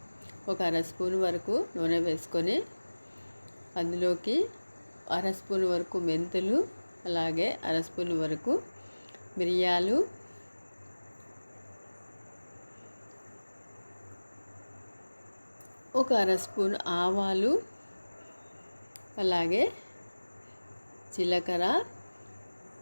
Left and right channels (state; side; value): inverted; both; correlation -1.00